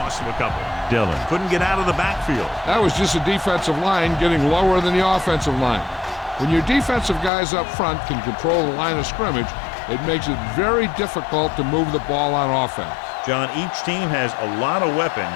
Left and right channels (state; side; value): drops out; right; at 7.3 s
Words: to a couple. Dillon couldn't get out of the backfield. That was just a defensive line getting lower than the offensive line. When your defensive guys up front can control the line of scrimmage, it makes it very difficult to move the ball on offense. John, each team has a lot of